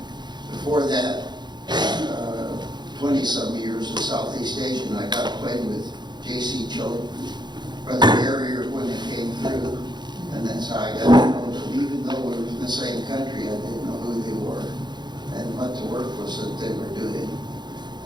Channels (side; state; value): left; late; 0.21 ms